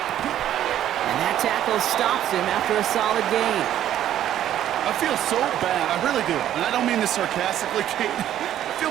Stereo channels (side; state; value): left; quieter; 11.5 dB